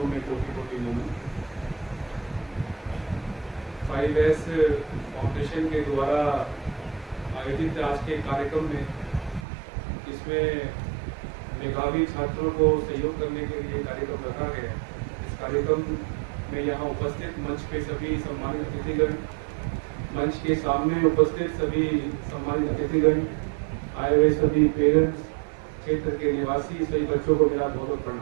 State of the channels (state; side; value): drops out; left; at 9.5 s